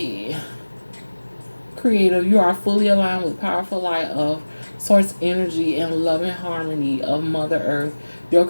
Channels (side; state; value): both; inverted; correlation -1.00